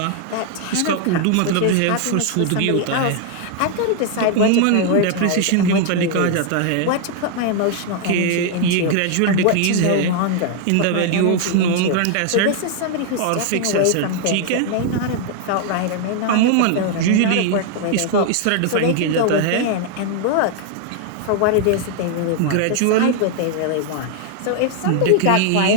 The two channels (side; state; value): both; different; correlation 0.00